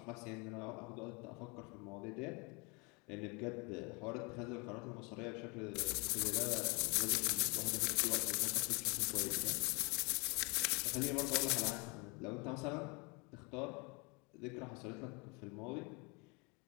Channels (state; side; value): quieter; right; 30.1 dB